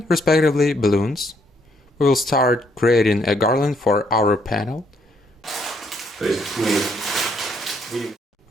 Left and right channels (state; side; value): normal; both; correlation 0.70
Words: respectively balloons. We will start creating a garland for our panel. We